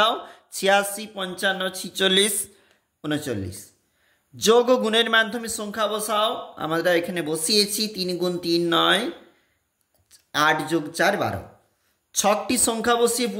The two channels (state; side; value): identical; both; correlation 1.00